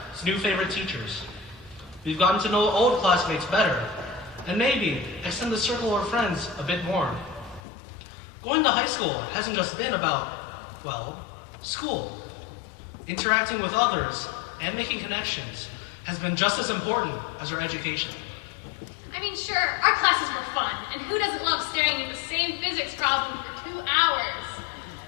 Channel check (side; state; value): right; drops out; at 7.6 s